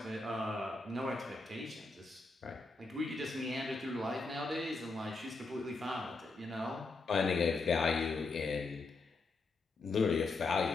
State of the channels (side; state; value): right; quieter; 3.7 dB